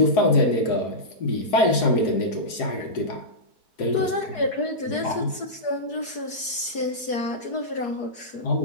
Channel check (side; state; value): right; late; 4.6 ms